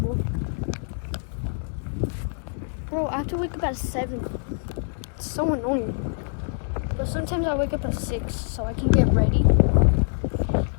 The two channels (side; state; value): right; silent; 62 dB below the other